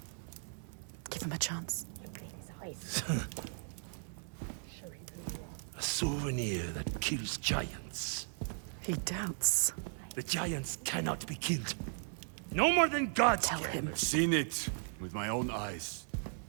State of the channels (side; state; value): left; silent; 53 dB below the other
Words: Give him a chance. Look in his eyes. Show him who you are. A souvenir that kills giants. He doubts. Why? The giants cannot be killed. No more than gods can. I've seen it with my own eyes.